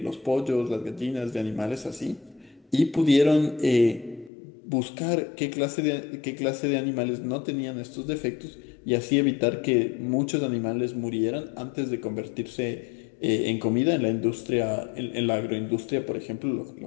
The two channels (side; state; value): right; drops out; at 4.3 s